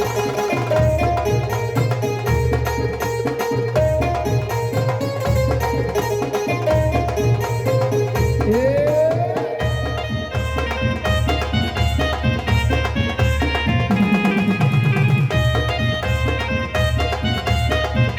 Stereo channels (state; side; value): identical; both; correlation 1.00